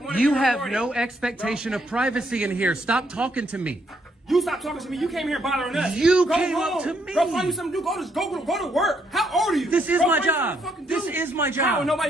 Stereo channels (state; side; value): normal; both; correlation 0.73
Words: wanna You be have recorded. no expectation of privacy in here. Stop talking to me. You stop talking to me. You came here bothering us. You Go came home. up to me. Go find you something to do. Go to work. How old are you? This is Go my find you job. something to fucking do. This is my job. How?